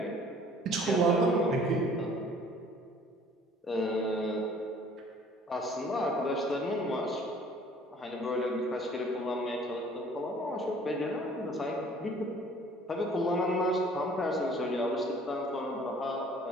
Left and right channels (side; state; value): both; normal; correlation 0.54